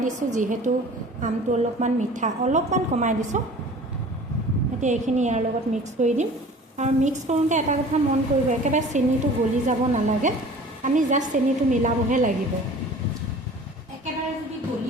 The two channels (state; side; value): normal; both; correlation 0.45